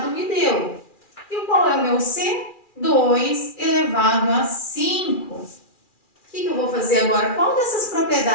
me deu. E qual é o meu C? 2 elevado a 5. O que eu vou fazer agora? Qual dessas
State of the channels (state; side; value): late; right; 2.4 ms